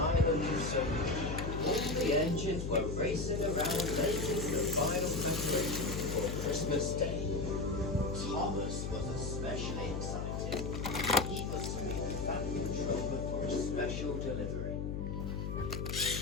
of Sophie. All the engines were racing around making the final preparation for Christmas Day. Thomas was especially excited. He was to be the fan controller for a special delivery.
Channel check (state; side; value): noise; left; hum, 3 dB below the sound